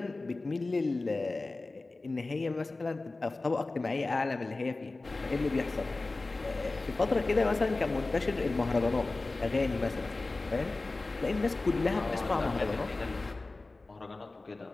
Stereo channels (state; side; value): quieter; right; 3.3 dB